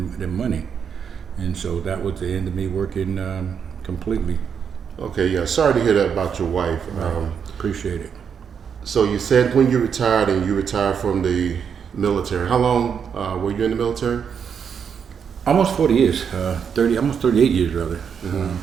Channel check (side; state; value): left; quieter; 7.1 dB